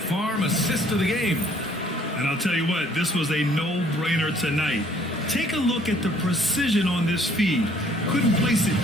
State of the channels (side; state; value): both; normal; correlation 0.60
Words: Farm assist of the game. And I'll tell you what, this was a no-brainer tonight. Take a look at the precision on this feed. Couldn't place it